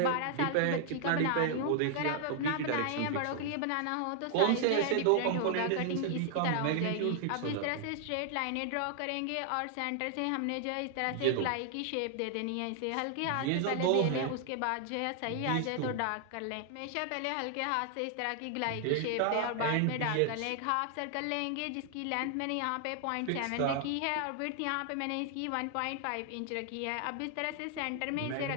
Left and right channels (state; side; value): different; both; correlation 0.00